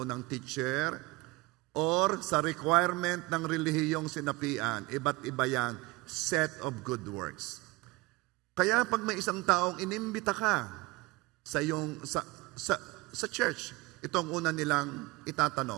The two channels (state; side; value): quieter; left; 21.9 dB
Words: ng teacher, or sa requirement ng relihiyong sinapian. Iba't iba yan, set of good works. Kaya pag may isang taong inimbita ka sa church, ito ang una nilang